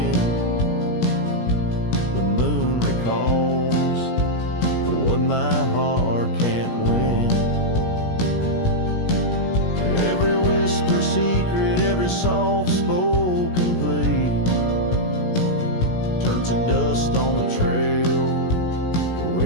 The moon recalls what my heart can't win. Every whisper secret, every soft spoken plea turns to dust on the trail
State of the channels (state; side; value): late; right; 17 ms